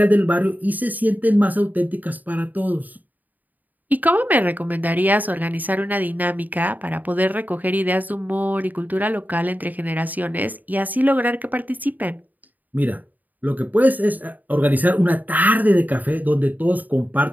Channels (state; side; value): late; left; 0.083 ms